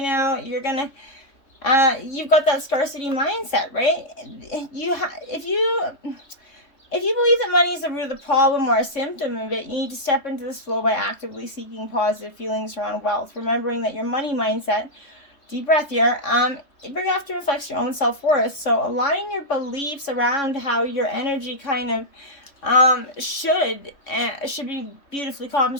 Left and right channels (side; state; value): right; late; 3.6 ms